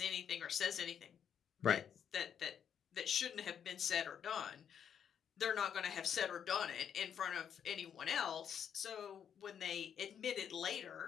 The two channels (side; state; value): right; quieter; 8.3 dB